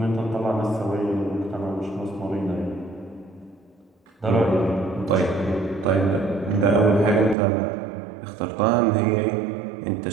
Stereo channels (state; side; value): drops out; left; at 7.4 s